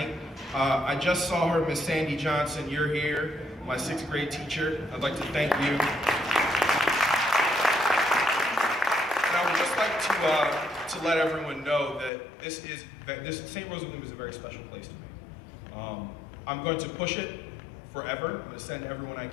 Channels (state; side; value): drops out; right; at 12.1 s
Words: I just saw her, Miss Sandy Johnson, you're here, my 6th grade teacher. I'd like to thank you. And I would just like to let everyone know that this St. Rose of Lima is a very special place to me. I'm going to push it forever. I'm going to send everyone I